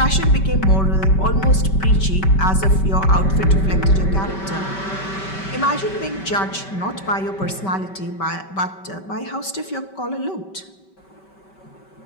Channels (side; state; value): right; late; 5.2 ms